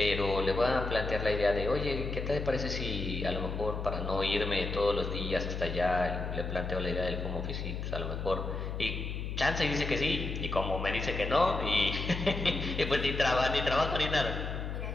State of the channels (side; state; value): left; noise; hum, 4 dB below the sound